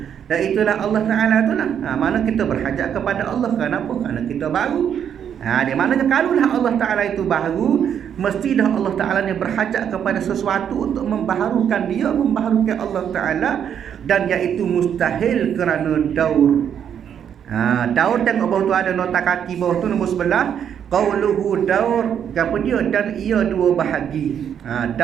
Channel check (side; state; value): left; quieter; 8.7 dB